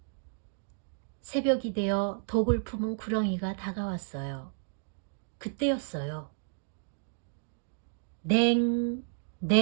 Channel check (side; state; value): left; silent; digital silence